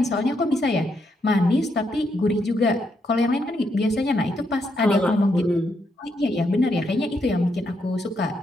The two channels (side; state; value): both; normal; correlation 0.78